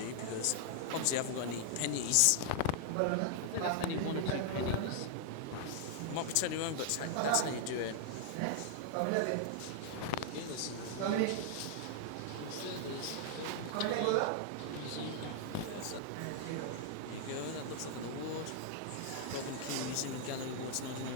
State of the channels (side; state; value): both; different; correlation -0.01